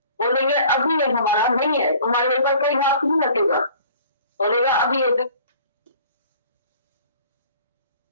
बोलेंगे अभी ये हमारा नहीं है तुम्हारे ऊपर कोई हाथ नहीं रखेगा बोलेगा अभी ये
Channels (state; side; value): inverted; both; correlation -0.50